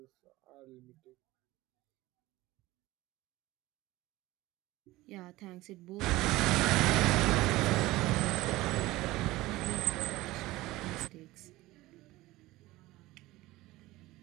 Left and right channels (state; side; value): quieter; left; 18.5 dB